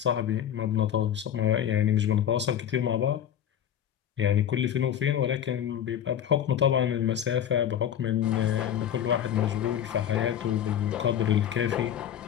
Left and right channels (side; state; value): right; quieter; 9.9 dB